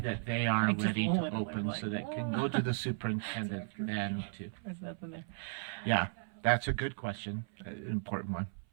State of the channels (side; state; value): left; silent; 54 dB below the other